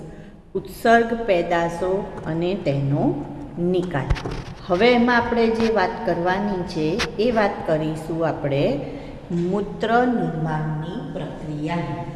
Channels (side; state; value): both; identical; correlation 1.00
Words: ઉત્સર્ગ પેદાશો અને તેનો નિકાલ. હવે એમાં આપણે જે વાત કરવાની છે એ વાત કરીશું આપણે મૂત્ર નિર્માણની પ્રક્રિયાની.